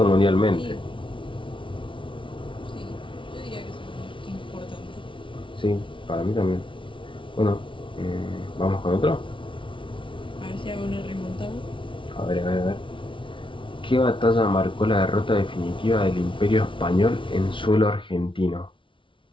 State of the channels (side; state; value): right; late; 0.25 ms